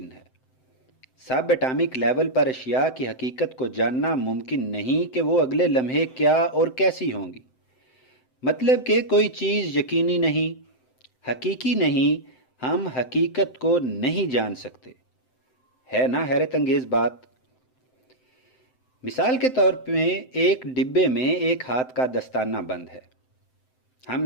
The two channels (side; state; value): right; late; 7.8 ms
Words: ہے۔ سب اٹامک لیول پر اشیاء کی حقیقت کو جاننا ممکن نہیں کہ وہ اگلے لمحے کیا اور کیسی ہوں گی۔ مطلب کہ کوئی چیز یقینی نہیں، حقیقی نہیں، ہم حقیقت کو نہیں جان سکتے۔ ہے نا حیرت انگیز بات؟ مثال کے طور پہ ایک ڈبے میں ایک ہاتھ کا دستانہ بند ہے۔ ہم